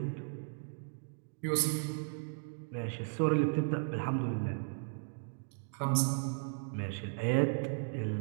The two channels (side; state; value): left; silent; digital silence